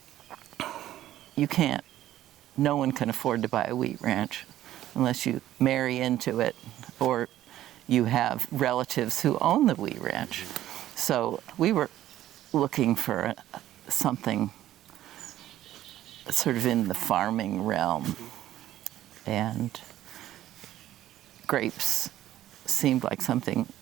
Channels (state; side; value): quieter; left; 13.4 dB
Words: no one can afford to buy a wheat ranch unless you marry into it or you have relatives who own the wheat ranch. So we were looking for something sort of in the farming realm, and grapes seemed like something